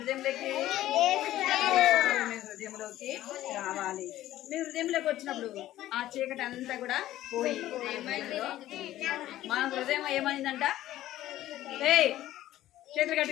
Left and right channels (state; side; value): quieter; right; 14.1 dB